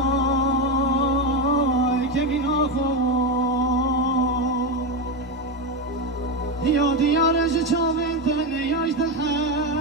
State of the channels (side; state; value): both; normal; correlation 0.12